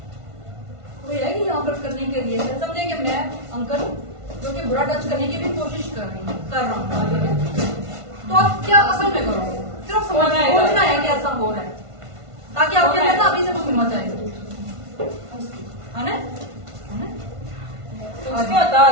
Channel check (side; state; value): left; late; 1.5 ms